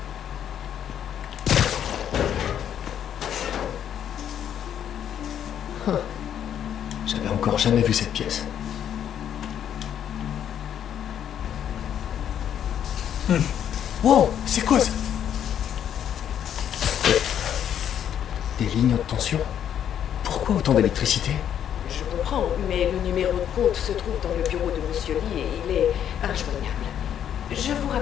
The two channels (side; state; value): right; quieter; 9.6 dB